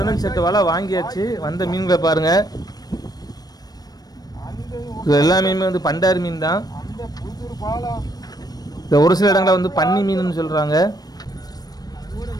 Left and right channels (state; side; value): late; right; 0.19 ms